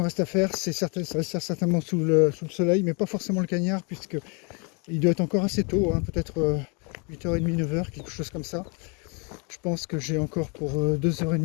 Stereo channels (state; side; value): quieter; right; 33.7 dB